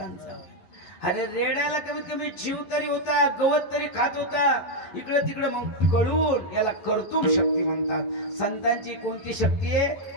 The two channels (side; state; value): right; late; 11 ms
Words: अरे रेड्याला कमीत कमी जीव तरी होता. गवत तरी खात होता. इकडं तिकडं मग कळून याला कर्तुम शक्ती म्हणतात. संतांची कोणती शक्ती आहे.